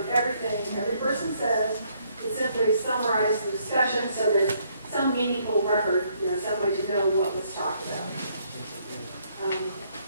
everything every person says. It simply summarizes the discussion so there's some meaningful record, some way to know what was talked about.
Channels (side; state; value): both; inverted; correlation -0.69